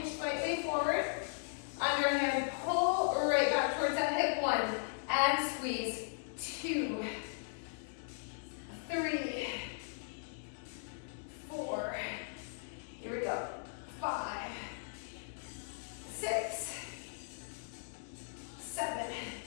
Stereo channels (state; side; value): silent; right; digital silence